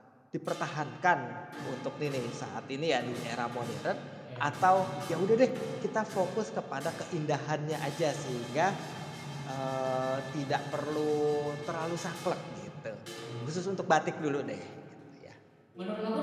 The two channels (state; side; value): identical; both; correlation 1.00